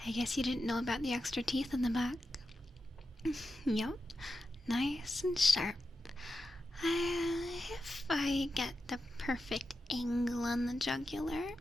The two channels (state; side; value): normal; both; correlation 0.90